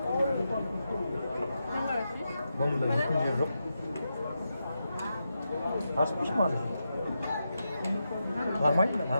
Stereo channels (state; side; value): inverted; both; correlation -0.87